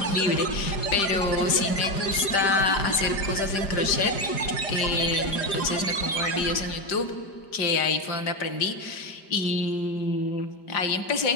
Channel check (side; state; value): right; late; 5.0 ms